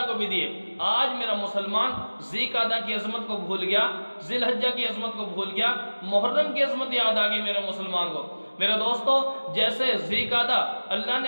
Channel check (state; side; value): inverted; both; correlation -1.00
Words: کو بھی دی ہے۔ آج میرا مسلمان ذی قعدہ کی عظمت کو بھول گیا، ذی الحجہ کی عظمت کو بھول گیا، محرم کی عظمت یاد آ گئی میرے مسلمان کو۔ میرے دوستو، جیسے ذی قعدہ اللہ